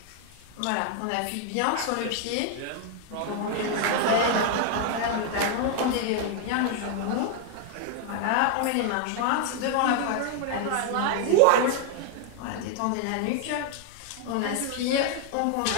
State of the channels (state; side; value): different; both; correlation 0.00